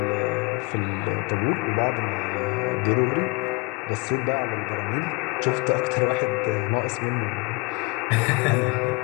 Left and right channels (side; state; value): right; quieter; 28.0 dB